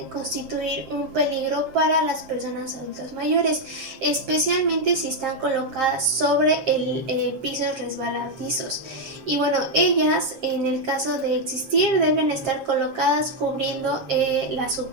constituir un peligro para las personas adultas mayores, especialmente si están colocadas sobre pisos resbaladizos. Y bueno, ellas en el caso de existir deben estar colocadas cubriendo la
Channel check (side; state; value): left; late; 7.5 ms